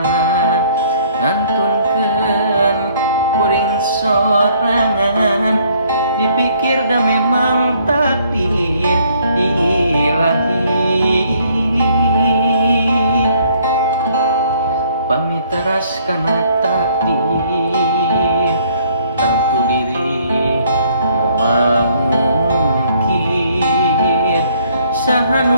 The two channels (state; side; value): inverted; both; correlation -0.63